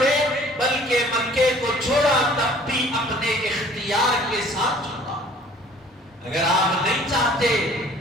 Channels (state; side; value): normal; both; correlation 0.53